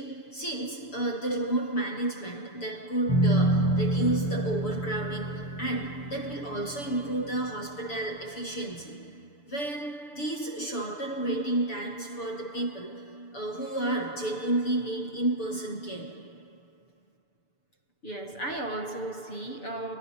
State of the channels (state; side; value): late; right; 6.9 ms